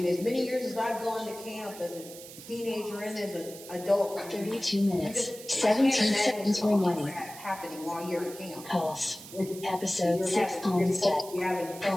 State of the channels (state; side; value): noise; right; hiss, 15 dB below the sound